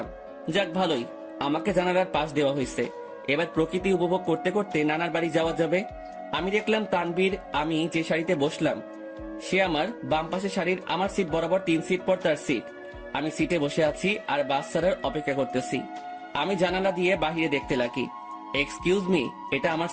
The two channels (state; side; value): identical; both; correlation 1.00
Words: যাক ভালোই, আমাকে জানালার পাশ দেওয়া হয়েছে। এবার প্রকৃতি উপভোগ করতে করতে নানার বাড়ি যাওয়া যাবে। আমি দেখলাম তানবীর, আমি যে শাড়িতে বসলাম সে আমার বাম পাশে শাড়ির আমার সিট বরাবর 3 সিট পর তার সিট। আমি সিটে বসে আছি আর বাস ছাড়ার অপেক্ষা করতেছি। আমি জানালা দিয়ে বাহিরে দেখতে লাগি। এক্সকিউজ মি, এটা আমার